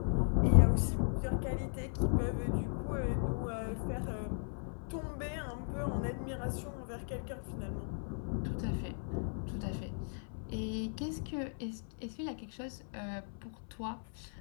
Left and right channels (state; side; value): silent; right; 53 dB below the other